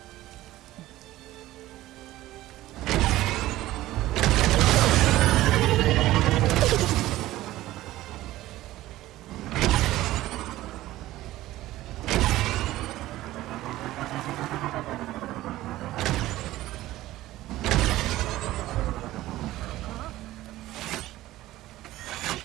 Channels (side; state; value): left; quieter; 16.0 dB